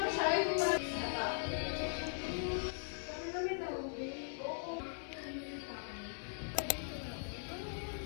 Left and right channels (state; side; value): silent; right; 51 dB below the other